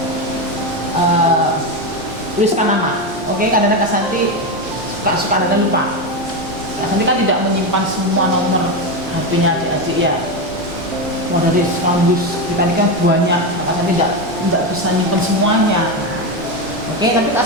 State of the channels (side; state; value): both; normal; correlation 0.13